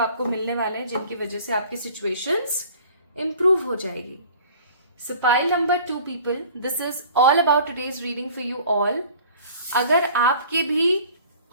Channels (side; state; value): both; inverted; correlation -0.48